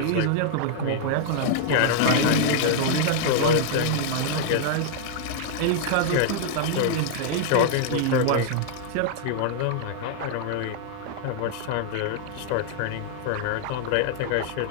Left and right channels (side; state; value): both; different; correlation -0.01